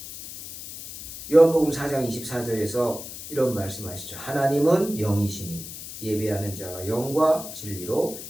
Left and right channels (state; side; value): noise; left; hiss, 11 dB below the sound